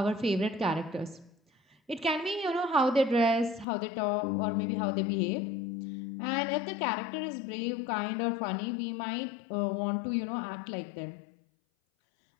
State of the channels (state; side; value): drops out; right; at 3.7 s